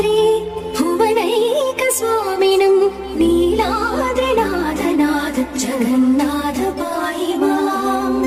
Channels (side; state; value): both; identical; correlation 1.00